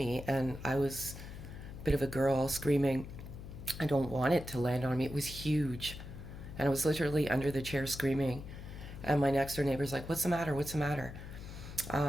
and I was a bit of a girl screaming, I don't want it to land on me. It was huge. And I was literally under the chair screaming. And my next door neighbor's like, what's the matter? What's the matter?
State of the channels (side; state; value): left; noise; hum, 11 dB below the sound